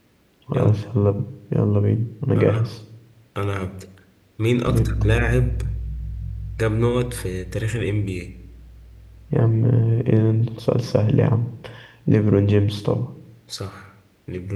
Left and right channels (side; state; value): both; identical; correlation 1.00